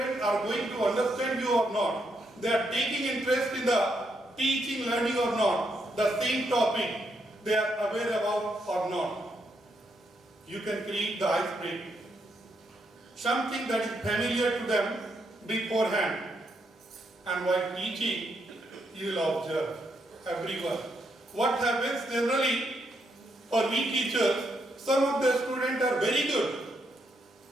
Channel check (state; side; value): normal; both; correlation 0.78